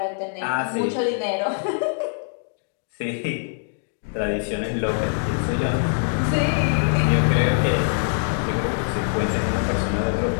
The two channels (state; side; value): silent; right; digital silence